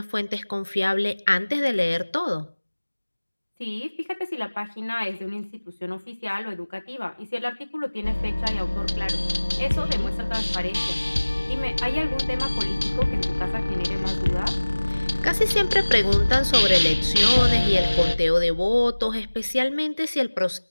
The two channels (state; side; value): inverted; both; correlation -1.00